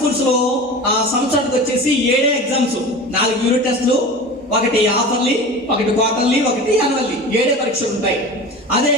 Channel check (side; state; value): both; normal; correlation 0.33